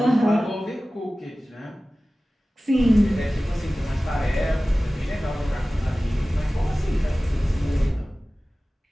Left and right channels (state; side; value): normal; both; correlation 0.97